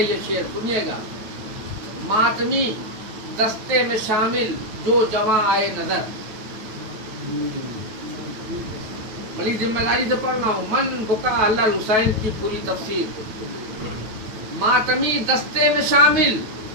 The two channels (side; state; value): left; late; 9.2 ms